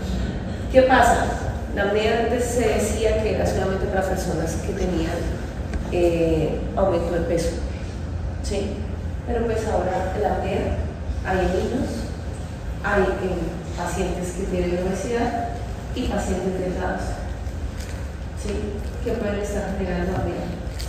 ¿Qué pasa? La apnea antes se decía que era solamente para personas que tenían aumento de peso, ¿sí? Pero pues ahora la apnea hay en niños, hay en pacientes que tienen obesidad y pacientes delgados, ¿sí? Que pueden estar generando apnea.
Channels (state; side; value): identical; both; correlation 1.00